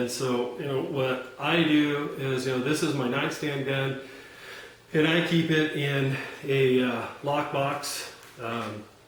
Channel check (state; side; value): identical; both; correlation 1.00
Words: so, what I do is, this is my nightstand gun, and I keep it in a lockbox,